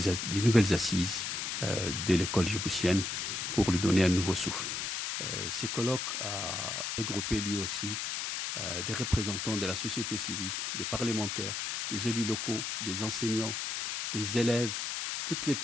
nouvelles assises de l'école djiboutienne pour lui donner un nouveau souffle. Ces colloques a regroupé lui aussi des représentants de la société civile, des parlementaires, des élus locaux, des enseignants, des élèves, toutes les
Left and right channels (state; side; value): noise; left; hiss, 3 dB below the sound